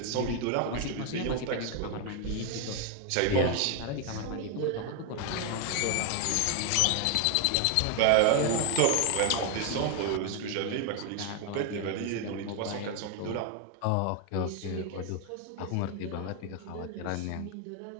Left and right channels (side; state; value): both; different; correlation 0.01